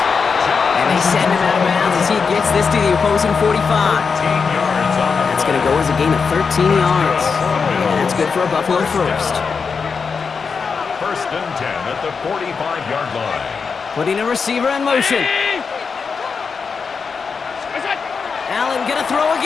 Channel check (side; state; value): right; quieter; 5.4 dB